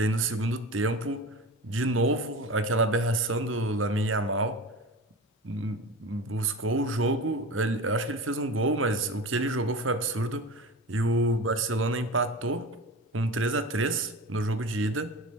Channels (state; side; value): normal; both; correlation 0.31